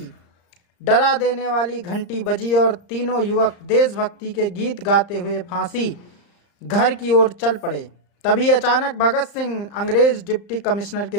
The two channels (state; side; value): late; right; 34 ms